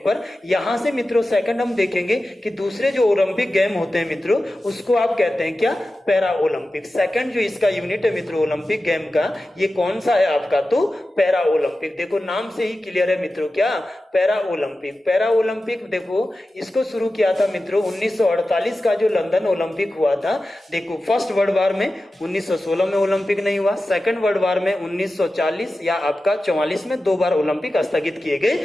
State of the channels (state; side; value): normal; both; correlation 0.94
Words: यहां से मित्रों सेकंड हम देखेंगे कि दूसरे जो ओलंपिक गेम होते हैं मित्रों उसको आप कहते हैं क्या, पैरा ओलंपिक। सेकंड जो इसका यूनिट है मित्रों ओलंपिक गेम का, ये कौन सा है आपका, तो पैरा ओलंपिक। देखो नाम से ही क्लियर है मित्रों, क्या, पैरा ओलंपिक। पैरा ओलंपिक देखो इसको शुरू किया था मित्रों 1948 का जो लंदन ओलंपिक हुआ था। देखो फर्स्ट वर्ल्ड वार में 1916 में ओलंपिक नहीं हुआ, सेकंड वर्ल्ड वार में 1940 या आपका 44 में 2 बार ओलंपिक स्थगित किए